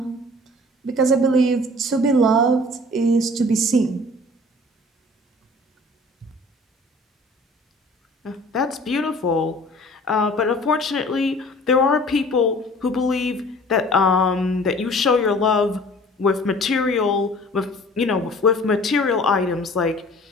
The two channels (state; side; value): normal; both; correlation 0.48